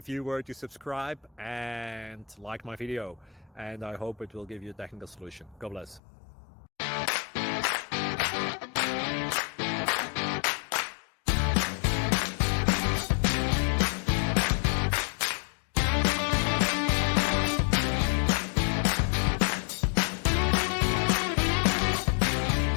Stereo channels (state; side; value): drops out; right; at 6.0 s